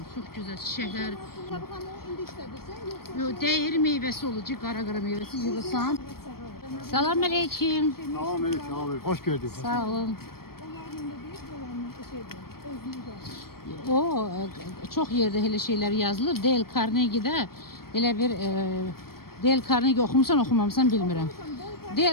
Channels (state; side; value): late; right; 0.94 ms